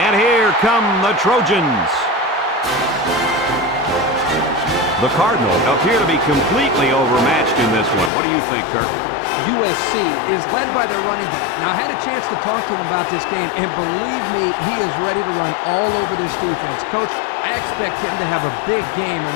here come the Trojans. The Cardinals appear to be completely overmatched in this one. What do you think, Kirk? USC is led by their running back. Now, I had a chance to talk to him about this game, and believe me, he is ready to run all over this defense. Coach, I expect him to have a big game on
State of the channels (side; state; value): right; drops out; at 8.1 s